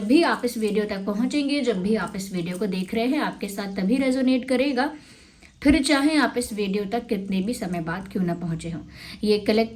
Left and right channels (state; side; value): identical; both; correlation 1.00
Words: भी आप इस वीडियो तक पहुंचेंगे, जब भी आप इस वीडियो को देख रहे हैं, आपके साथ तभी रेजोनेट करेगा, फिर चाहे आप इस वीडियो तक कितने भी समय बाद क्यों ना पहुंचे हों। ये